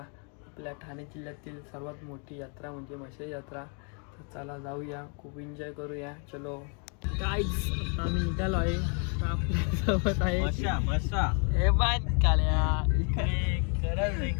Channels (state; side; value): quieter; right; 39.2 dB